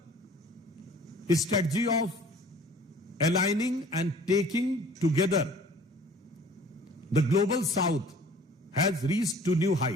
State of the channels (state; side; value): normal; both; correlation 0.50